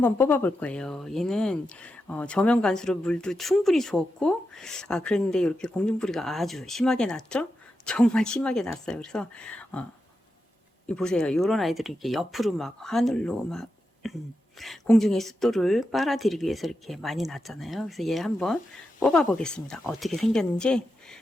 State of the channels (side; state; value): both; normal; correlation 0.88